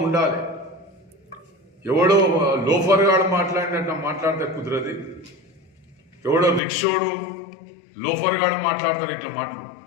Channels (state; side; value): drops out; right; at 6.6 s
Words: ఉండాలి. ఎవడో లోఫర్ గాడు మాట్లాడినట్టు మాట్లాడితే కుదరది. ఎవడో రిక్షోడు లోఫర్ గాడు మాట్లాడతారు ఇట్లా మాటలు,